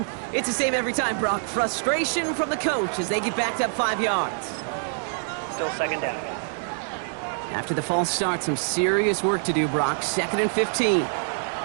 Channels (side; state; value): left; silent; 61 dB below the other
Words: it's the same every time, Brock. Frustration from the coach as they get backed up 5 yards. Still second down. After the false start, some serious work to do, Brock. 2nd and 15.